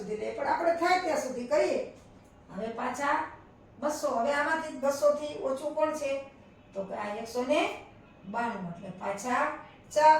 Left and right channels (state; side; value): identical; both; correlation 1.00